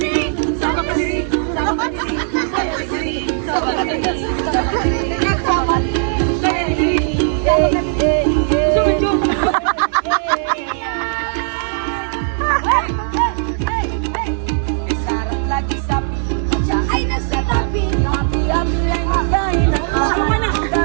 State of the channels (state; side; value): silent; left; 68 dB below the other